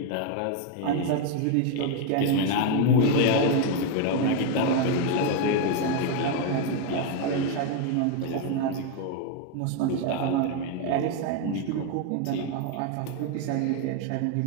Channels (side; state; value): both; different; correlation 0.01